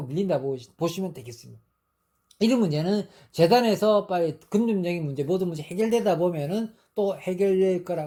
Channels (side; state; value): both; identical; correlation 1.00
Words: 밀린다 보시면 되겠습니다. 이런 문제는 재단에서 빨리 금융적인 문제 모든 문제 해결되다 보면은 또 해결될